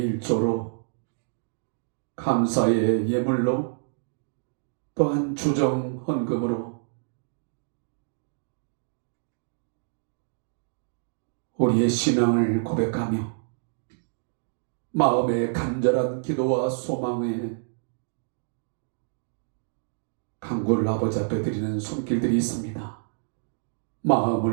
1조로 감사의 예물로 또한 주정 헌금으로 우리의 신앙을 고백하며 마음의 간절한 기도와 소망에 간구를 아버지 앞에 드리는 손길들이 있습니다.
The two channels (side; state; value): left; silent; digital silence